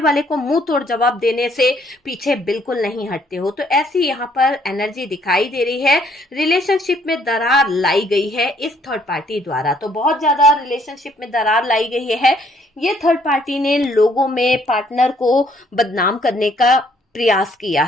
को मुंह तोड़ जवाब देने से पीछे बिल्कुल नहीं हटते हो। तो ऐसी यहाँ पर एनर्जी दिखाई दे रही है, रिलेशनशिप में दरार लाई गई है इस थर्ड पार्टी द्वारा। तो बहुत ज्यादा रिलेशनशिप में दरार लाई गई है, ये थर्ड पार्टी ने लोगों में पार्टनर को बदनाम करने का प्रयास किया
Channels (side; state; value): both; normal; correlation 0.66